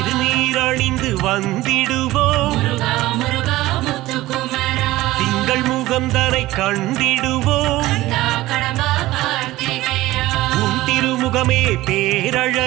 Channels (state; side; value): quieter; left; 17.3 dB